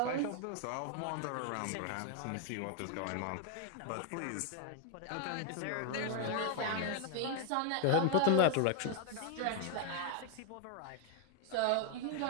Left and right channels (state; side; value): different; both; correlation 0.01